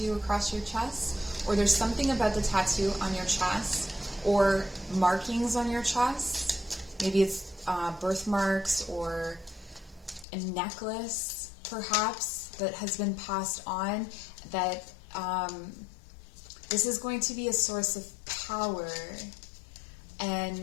across your chest, or there's something about the tattoo on your chest, or markings on your chest. Maybe it's birthmarks or a necklace, perhaps, that has been passed on, that this is going to be a source of power.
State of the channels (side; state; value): right; drops out; at 10.2 s